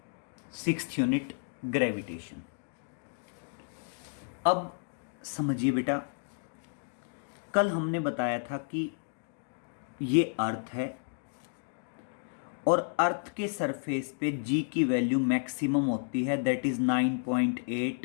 6th यूनिट ग्रेविटेशन। अब समझिए बेटा, कल हमने बताया था कि ये अर्थ है और अर्थ के सरफेस पे जी की वैल्यू मैक्सिमम होती है, that is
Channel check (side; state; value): right; silent; digital silence